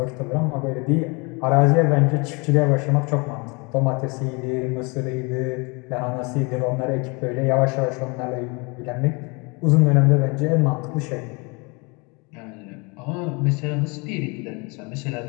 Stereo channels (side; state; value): right; quieter; 29.7 dB